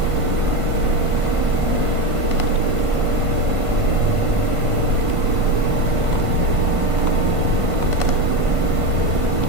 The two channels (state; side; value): late; left; 1.5 ms